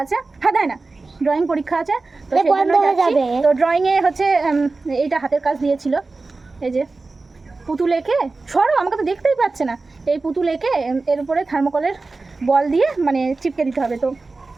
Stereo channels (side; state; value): left; quieter; 3.7 dB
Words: আছে। হ্যাঁ, তাই না, ড্রয়িং পরীক্ষা আছে। তো সেই জন্য যাচ্ছি। তো ড্রয়িংয়ে হচ্ছে এইটা হাতের কাজ দিয়েছিল, এই যে পুতুল এঁকে, সরো, আমাকে তো দেখতেই পাচ্ছে না। এই পুতুল এঁকে এর উপরে থার্মোকলের বল দিয়ে মানে চিপকে দিতে হবে। তো